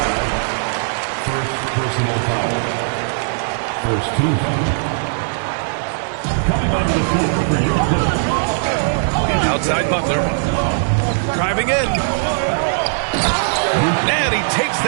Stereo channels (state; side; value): silent; left; digital silence